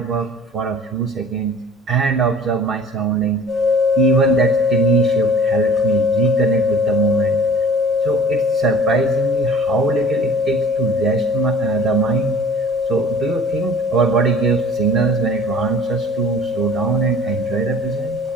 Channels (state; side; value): normal; both; correlation 0.47